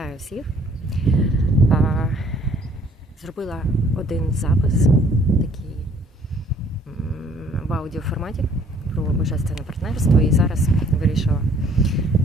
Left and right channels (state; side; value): normal; both; correlation 0.59